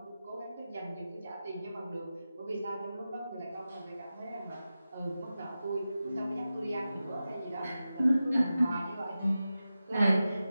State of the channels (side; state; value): both; inverted; correlation -0.93